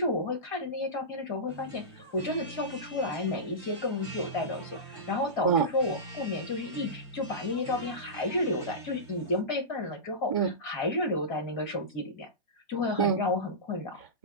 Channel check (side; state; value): right; late; 1.3 ms